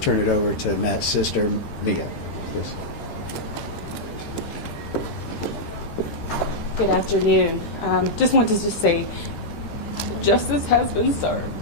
it over to Matt's sister, Mia, please. Good afternoon. Just wanted to say justice has been served.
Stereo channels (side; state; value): right; late; 13 ms